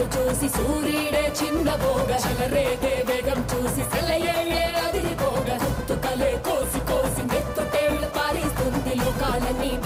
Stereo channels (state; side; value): identical; both; correlation 1.00